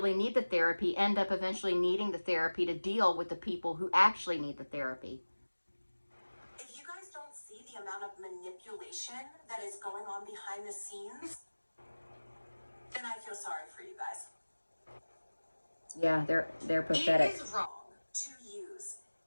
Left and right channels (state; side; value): inverted; both; correlation -1.00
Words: need the therapy end up eventually needing the therapy to deal with the people who actually need the therapy. If you guys don't see the amount of manipulation that is going on behind the scenes, then I feel sorry for you guys. Yeah, they're pathetic. It is wrong to use